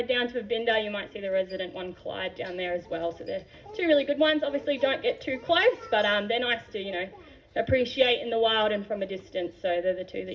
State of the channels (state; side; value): identical; both; correlation 1.00